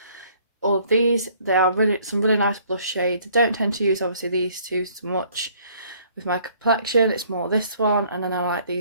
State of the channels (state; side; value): inverted; both; correlation -0.60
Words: all of these. They are some really nice blush shades. I don't tend to use obviously these two so much with my complexion. It's more this one, and then I like